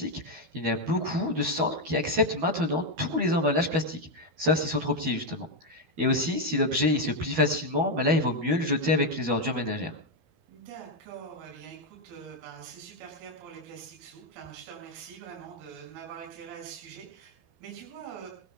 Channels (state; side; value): late; left; 12 ms